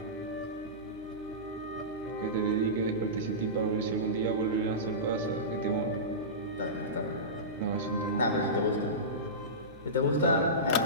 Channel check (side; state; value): both; normal; correlation -0.19